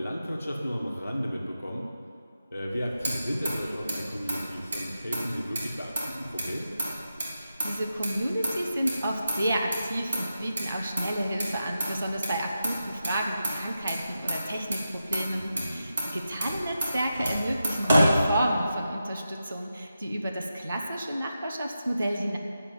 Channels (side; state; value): both; inverted; correlation -0.89